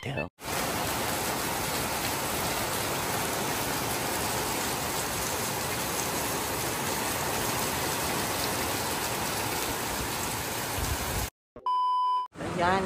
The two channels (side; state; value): both; identical; correlation 1.00